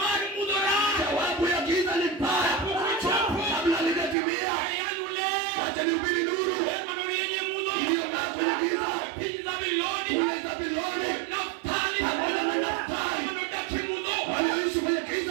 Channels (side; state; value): left; drops out; at 4.2 s